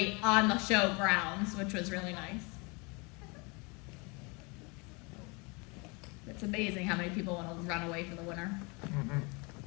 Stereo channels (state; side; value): quieter; right; 29.5 dB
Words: on the show grounds, which was really nice. It's amazing how many people want to run away for the winter.